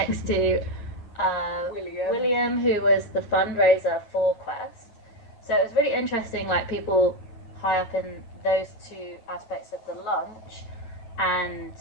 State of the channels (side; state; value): right; late; 9.2 ms